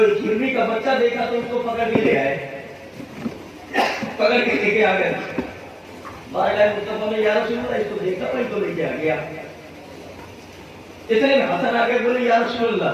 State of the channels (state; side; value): identical; both; correlation 1.00